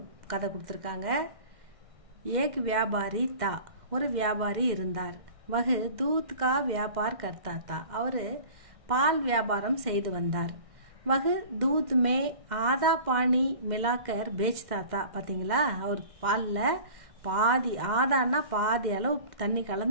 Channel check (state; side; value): late; left; 1.6 ms